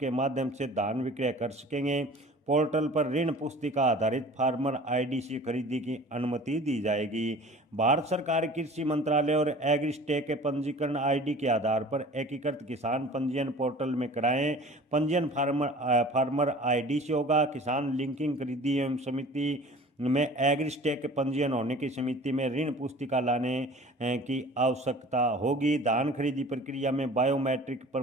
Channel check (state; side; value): normal; both; correlation 0.44